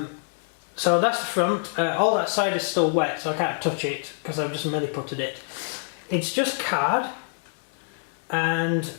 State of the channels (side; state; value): right; silent; digital silence